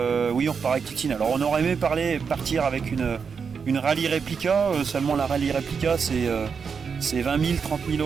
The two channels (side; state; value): left; quieter; 6.0 dB